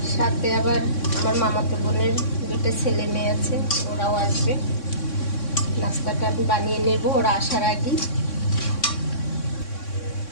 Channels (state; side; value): late; right; 3.6 ms